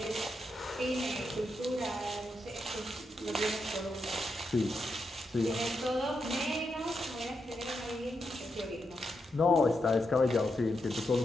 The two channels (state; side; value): normal; both; correlation 0.84